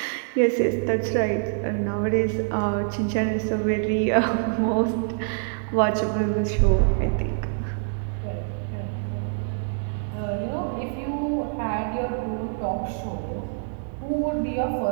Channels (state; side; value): silent; left; digital silence